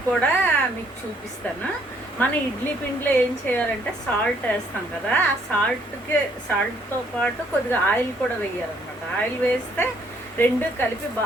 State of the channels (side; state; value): both; normal; correlation 0.66